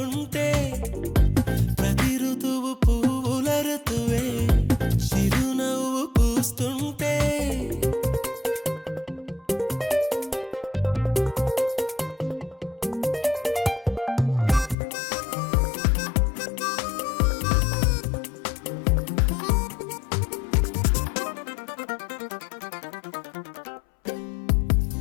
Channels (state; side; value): drops out; right; at 14.8 s